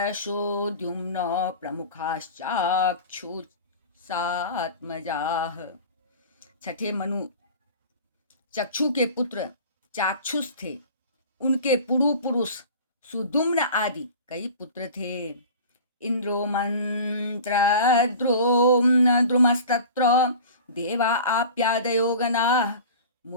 प्रमुखाश्चाक्षुषात्मजाः। छठे मनु चक्षु के पुत्र चाक्षुष थे। उनके पुरु पुरुष सुदुम्न आदि कई पुत्र थे। इंद्रो द्रुमस्तत्र देवा आप्यादयो गणाः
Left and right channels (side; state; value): both; inverted; correlation -0.39